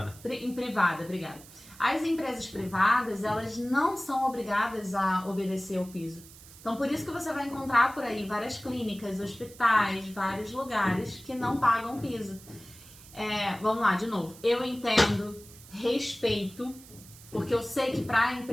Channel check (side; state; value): right; noise; hiss, 20 dB below the sound